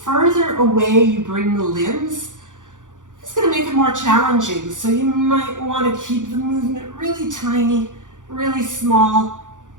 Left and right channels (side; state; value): left; late; 0.87 ms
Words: further away you bring the limbs, it's going to make it more challenging. So you might want to keep the movement really tiny, really small.